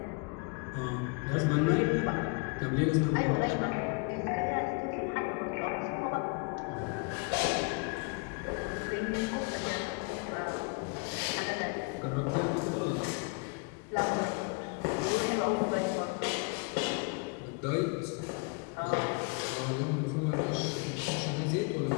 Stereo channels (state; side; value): quieter; right; 32.9 dB